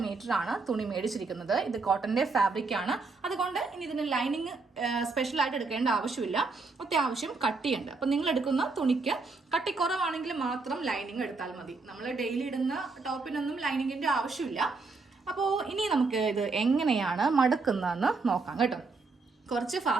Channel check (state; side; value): quieter; left; 4.0 dB